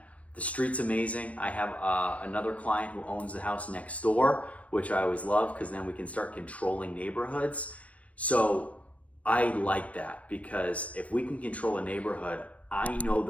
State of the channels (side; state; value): right; late; 0.066 ms